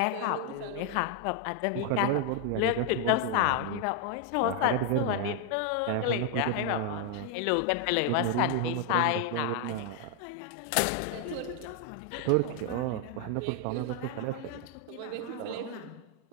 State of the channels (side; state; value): both; different; correlation 0.01